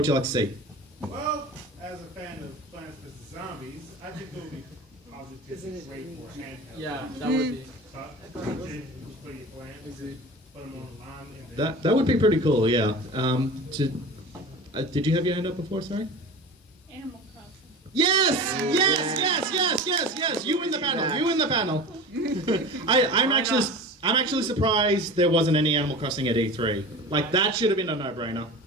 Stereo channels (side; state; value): both; normal; correlation 0.34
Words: you like to see? Well, as a fan of Plants vs. Zombies, I think it would be positively great for handheld. Yeah, that would be. For your plants. Put them online. That would be pretty cool. Yeah. Did you have your hand up before? Sorry. Animal Crossing. Yes! You win the panel. I'm actually surprised there wasn't any Animal Crossing at E3. Like that should have been a no-brainer.